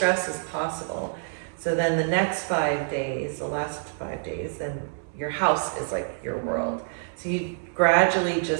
as possible. So then the next 5 days, the last 5 days, then your house is like your world. So you gradually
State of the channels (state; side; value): silent; left; 60 dB below the other